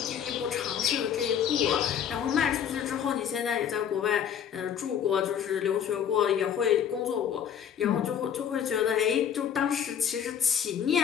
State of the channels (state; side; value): quieter; right; 8.6 dB